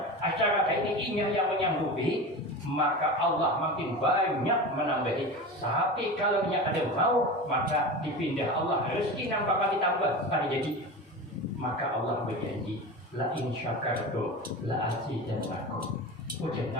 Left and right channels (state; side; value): normal; both; correlation 0.28